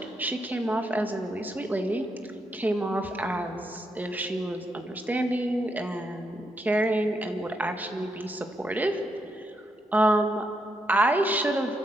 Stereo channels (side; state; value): both; normal; correlation 0.80